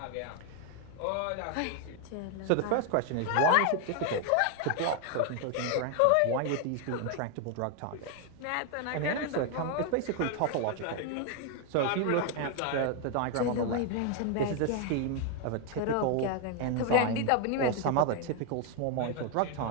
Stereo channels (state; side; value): different; both; correlation 0.01